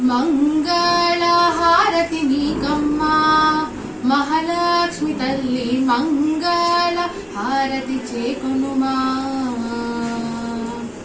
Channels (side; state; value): both; identical; correlation 1.00